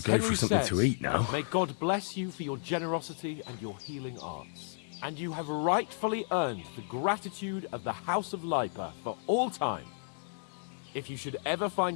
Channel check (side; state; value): right; silent; digital silence